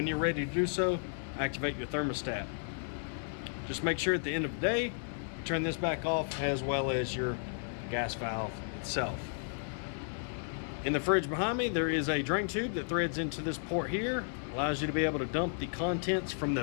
you're ready to do so, activate your thermostat. Just make sure at the end of the day, turn this back off, as well as your gas valve itself. In the fridge behind me, there is a drain tube that threads into this port here. Allows you to be able to dump the contents from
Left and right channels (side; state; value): right; silent; 55 dB below the other